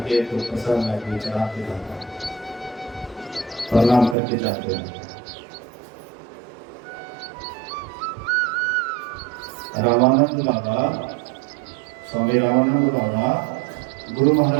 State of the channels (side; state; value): left; drops out; at 4.2 s